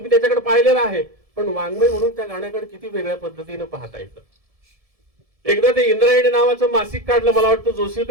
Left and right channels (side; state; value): left; late; 1.7 ms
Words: त्याच्याकडे पाहिलेलं आहे, पण वाङ्मय म्हणून त्या गाण्याकडे किती वेगळ्या पद्धतीने पाहता येतं. एकदा ते इंद्रायणी नावाचं मासिक काढलं, मला वाटतं जोशी